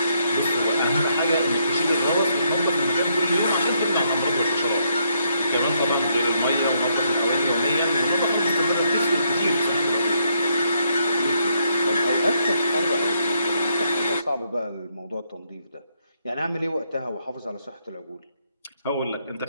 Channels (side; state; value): both; inverted; correlation -0.74